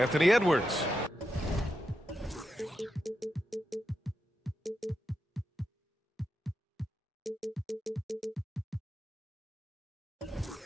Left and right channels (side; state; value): both; normal; correlation 0.87